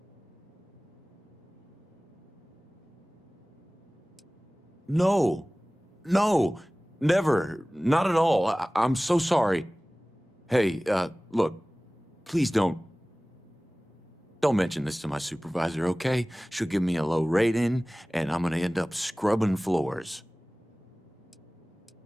No, never, not at all. I'm so sorry. Hey, look, please don't mention this to my supervisor, okay? She'll give me a low rating, and I'm gonna end up scrubbing floors.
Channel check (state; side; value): normal; both; correlation 0.98